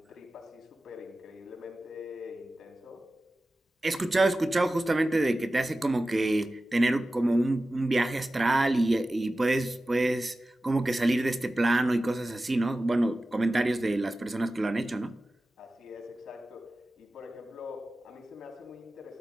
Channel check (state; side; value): normal; both; correlation 0.95